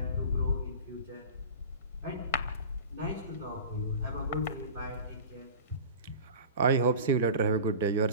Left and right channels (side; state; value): both; inverted; correlation -0.35